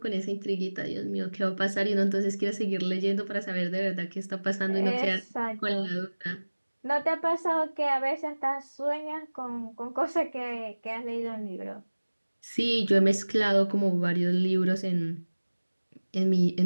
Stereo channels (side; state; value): both; inverted; correlation -1.00